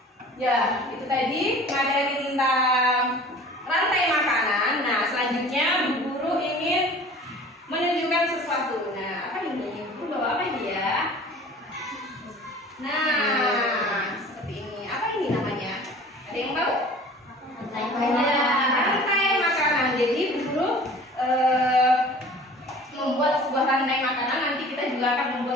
Ya, itu tadi materi tentang rantai makanan. Nah, selanjutnya Bu Guru ingin menunjukkan sesuatu. Nah, apa ini? Bu Guru bawa apa ini ya? Nah, seperti ini. Apa ini namanya? Ada yang tahu? Rantai makanan. Jadi Bu Guru membuat sebuah rantai makanan. Nanti kita juga akan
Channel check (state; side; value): normal; both; correlation 0.45